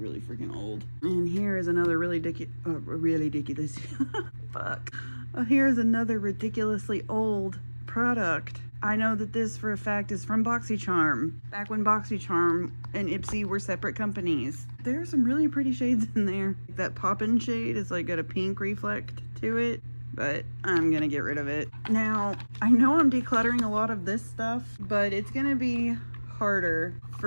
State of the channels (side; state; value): both; inverted; correlation -1.00